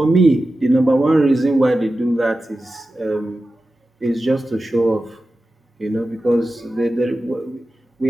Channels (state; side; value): normal; both; correlation 0.93